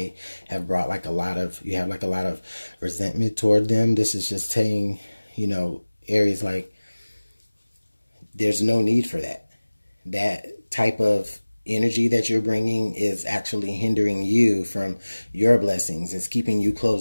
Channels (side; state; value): both; inverted; correlation -1.00